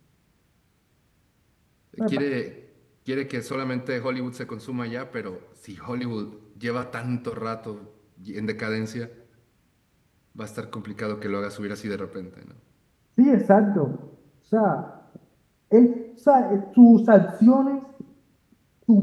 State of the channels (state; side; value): identical; both; correlation 1.00